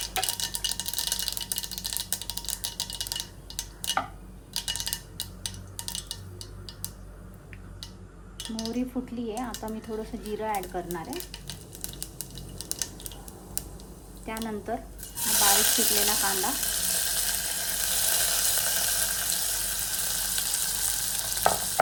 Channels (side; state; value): both; identical; correlation 1.00